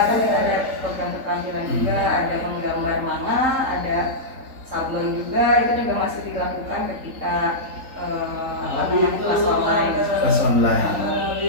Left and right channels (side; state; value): left; late; 3.8 ms